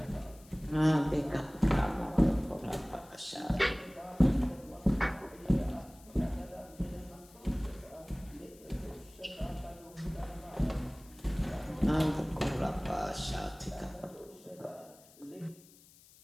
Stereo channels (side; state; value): left; noise; hiss, 24 dB below the sound